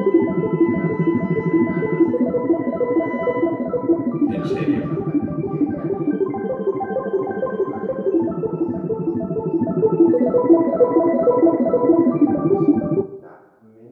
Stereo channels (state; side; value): identical; both; correlation 1.00